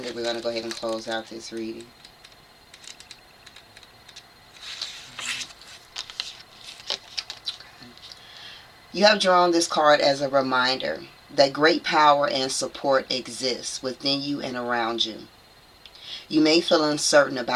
then we're going to go ahead and close out this reading. You have drawn this card as a reminder that great power and support exists within you and around you. You may feel uncertain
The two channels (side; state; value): both; identical; correlation 1.00